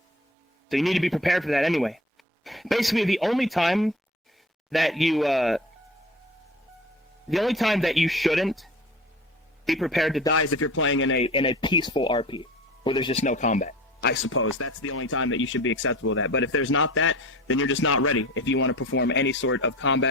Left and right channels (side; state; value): both; normal; correlation 0.39